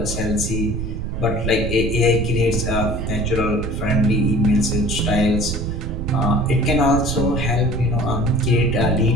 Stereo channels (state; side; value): noise; right; rumble, 3 dB below the sound